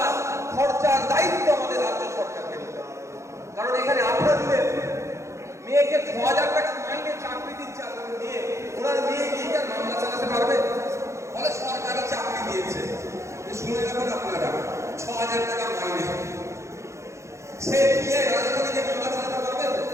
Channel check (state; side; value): late; left; 0.14 ms